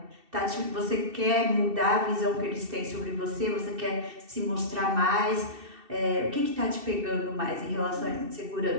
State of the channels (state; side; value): late; left; 2.6 ms